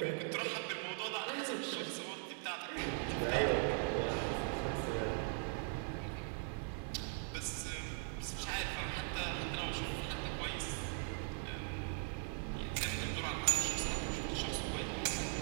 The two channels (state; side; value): silent; left; 51 dB below the other